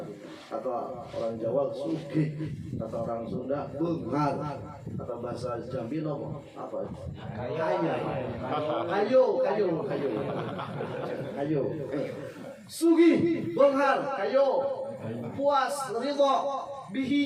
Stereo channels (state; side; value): identical; both; correlation 1.00